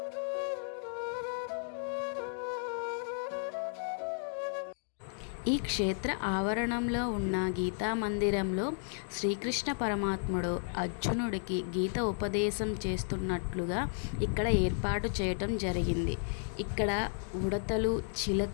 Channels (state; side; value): silent; right; digital silence